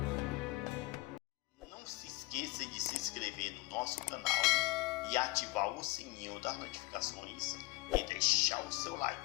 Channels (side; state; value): right; quieter; 21.4 dB